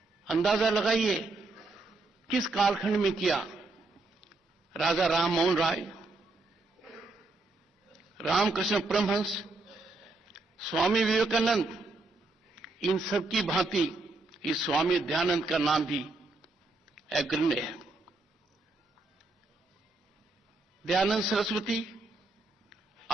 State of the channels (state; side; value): quieter; left; 3.2 dB